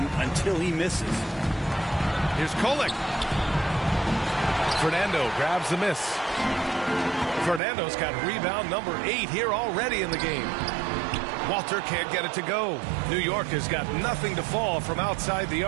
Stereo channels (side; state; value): left; drops out; at 7.6 s